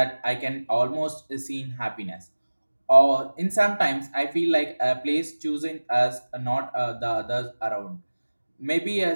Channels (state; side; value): inverted; both; correlation -1.00